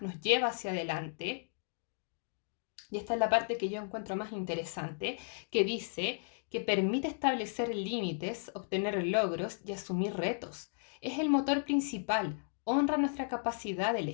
nos lleva hacia adelante. Y esta es la parte que yo encuentro más interesante, que dice que permite establecer límites, obtener logros y asumir retos. Es el motor principal, honra nuestra capacidad de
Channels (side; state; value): right; silent; digital silence